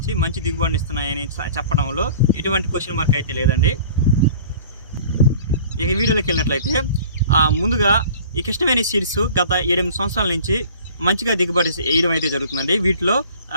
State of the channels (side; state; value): both; inverted; correlation -0.46